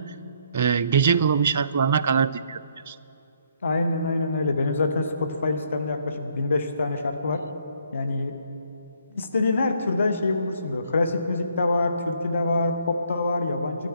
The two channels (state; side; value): inverted; both; correlation -0.67